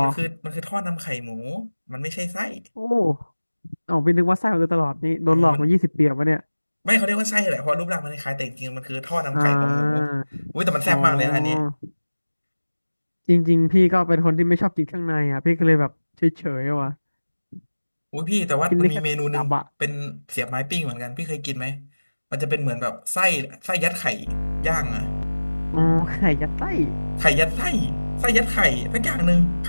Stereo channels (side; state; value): both; inverted; correlation -1.00